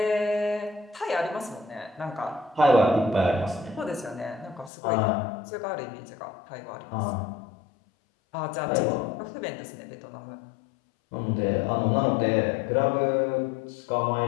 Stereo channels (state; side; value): drops out; right; at 4.7 s